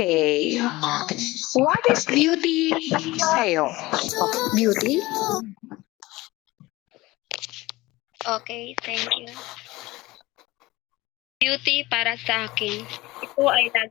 what is beauty sa'yo? Beauty? Okay, thank you. Beauty para sa akin, ito ay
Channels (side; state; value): right; quieter; 19.9 dB